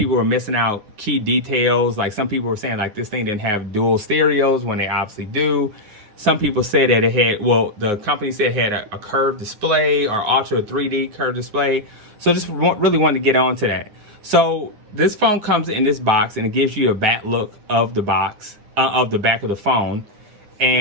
were missing out key details. Like, some people were saying like this thing didn't have dual stereos when they obviously do. Some people said that it had, well, the company said it had a curved display, or Ultra 3D curved display. So just really wanted to get on to that. So this phone comes in this box, and it gives you a back look of the box, of the back of the phone.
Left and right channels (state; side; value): late; left; 9.7 ms